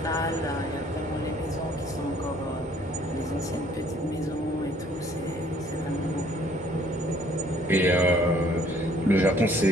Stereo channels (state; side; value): normal; both; correlation 0.60